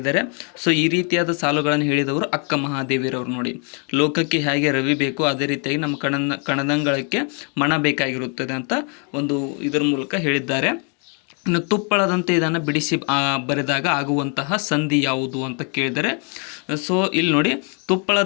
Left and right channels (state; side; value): quieter; right; 38.4 dB